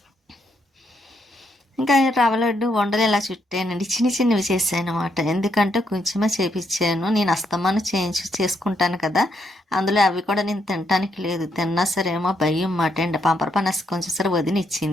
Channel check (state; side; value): normal; both; correlation 0.77